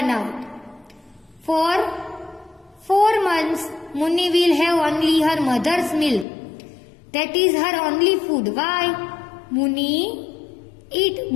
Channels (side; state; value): right; drops out; at 6.2 s